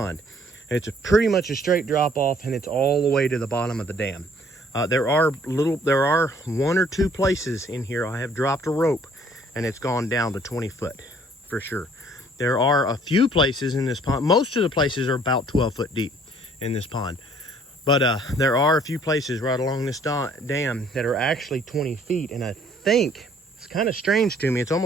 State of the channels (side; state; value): both; normal; correlation 0.59